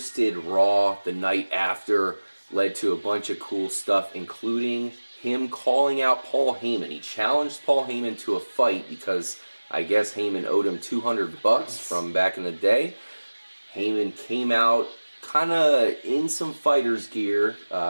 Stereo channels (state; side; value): inverted; both; correlation -1.00